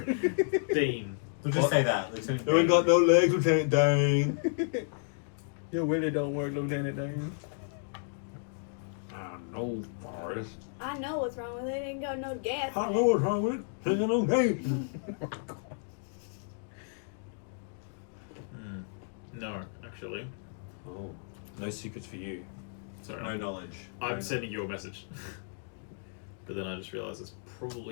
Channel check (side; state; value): right; silent; digital silence